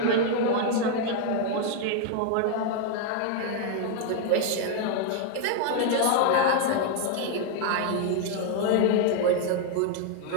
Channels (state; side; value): different; both; correlation 0.00